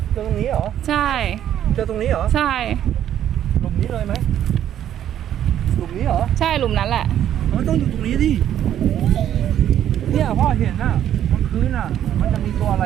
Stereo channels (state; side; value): quieter; left; 10.8 dB